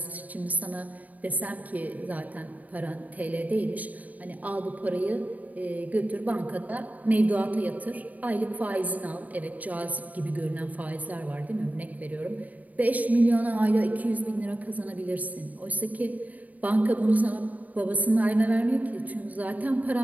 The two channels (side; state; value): left; late; 0.074 ms